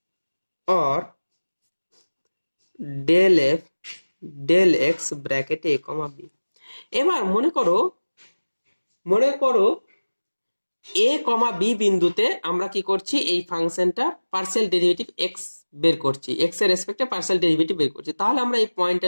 or del f del x bracket a comma b। এবার মনে করো a কমা b বিন্দুতে আমরা কি করছি, এই ফাংশনটা পার্সিয়াল ডেরিভেটিভ x বের করছি, x এর রেসপেক্টে পার্সিয়াল ডেরিভেটিভ বের করছি। তাহলে আমরা এই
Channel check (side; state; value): both; inverted; correlation -1.00